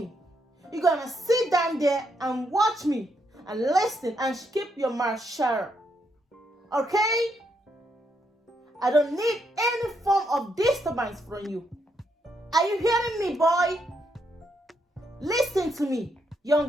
You're gonna sit down there and watch me and listen and keep your mouth shut. Okay? I don't need any form of disturbance from you. Are you hearing me, boy? Listen to me,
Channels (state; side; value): normal; both; correlation 0.77